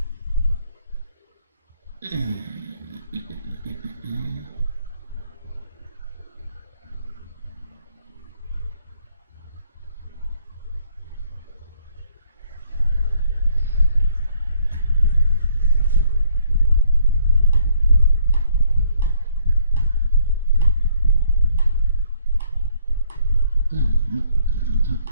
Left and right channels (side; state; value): both; inverted; correlation -0.65